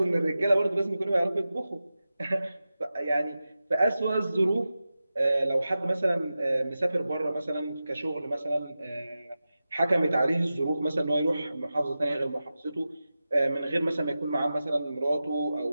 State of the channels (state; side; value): inverted; both; correlation -0.93